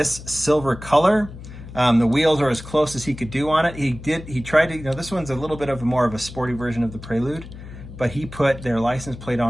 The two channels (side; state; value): left; noise; hum, 14 dB below the sound